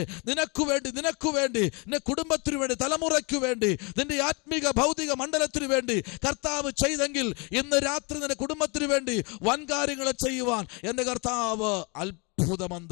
നിനക്ക് വേണ്ടി നിന്റെ കുടുംബത്തിനു വേണ്ടി, തലമുറയ്ക്ക് വേണ്ടി, നിന്റെ ആത്മീക ഭൗതിക മണ്ഡലത്തിനു വേണ്ടി കർത്താവ് ചെയ്തെങ്കിൽ ഇന്ന് രാത്രി നിന്റെ കുടുംബത്തിനു വേണ്ടി വൻ കാര്യങ്ങൾ ചെയ്യുവാൻ എൻ്റെ കർത്താവ്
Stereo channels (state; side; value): quieter; right; 31.1 dB